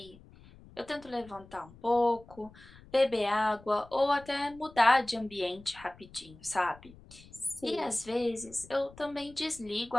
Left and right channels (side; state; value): left; noise; rumble, 22 dB below the sound